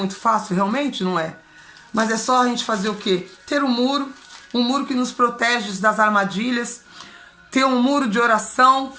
fácil, realmente não é. Mas é só a gente fazer o quê? Ter um muro que nos protege das armadilhas, ter um muro de oração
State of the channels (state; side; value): identical; both; correlation 1.00